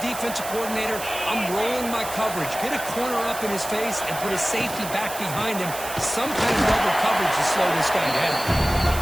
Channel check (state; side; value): noise; right; hiss, 10 dB below the sound